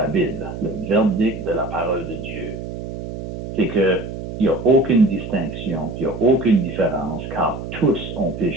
Bible, le verdict de la parole de Dieu, c'est qu'il n'y a aucune distinction, il n'y a aucune différence, car tous ont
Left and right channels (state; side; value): noise; right; hum, 8 dB below the sound